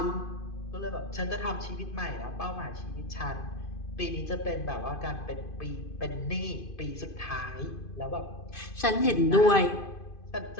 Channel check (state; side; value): late; right; 2.5 ms